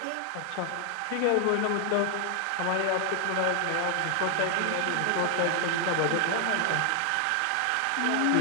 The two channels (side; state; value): both; different; correlation 0.00